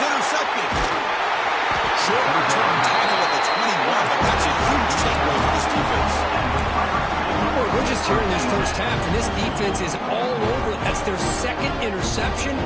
Short return tackle at the 21, but that's a huge takeaway for this defense. Boy, we're just here in this first half, and this defense is all over. That's their second interception.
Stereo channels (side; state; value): both; identical; correlation 1.00